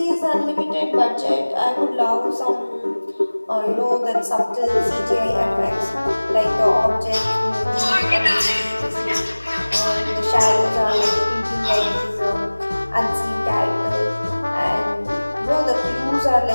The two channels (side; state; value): both; inverted; correlation -1.00